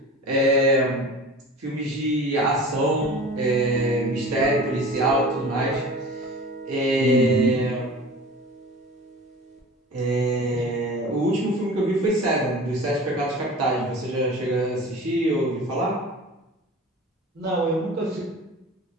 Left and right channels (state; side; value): normal; both; correlation 0.38